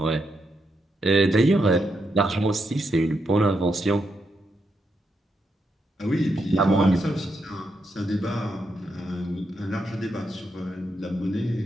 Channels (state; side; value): normal; both; correlation 0.82